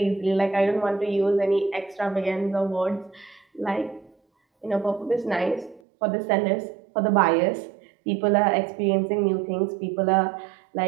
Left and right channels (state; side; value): drops out; left; at 5.8 s